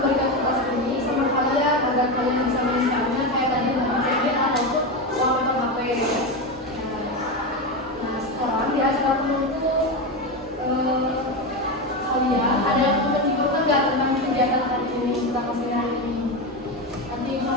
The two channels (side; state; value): both; normal; correlation 0.15